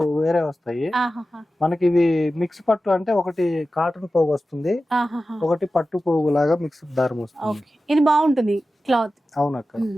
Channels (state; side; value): normal; both; correlation 0.94